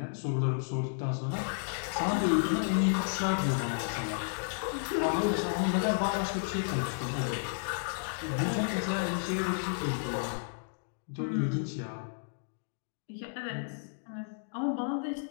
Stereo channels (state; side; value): silent; right; digital silence